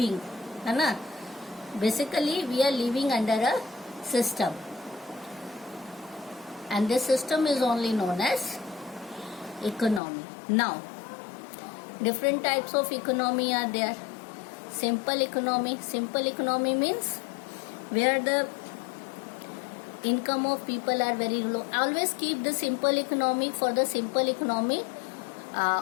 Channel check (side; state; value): right; drops out; at 10.0 s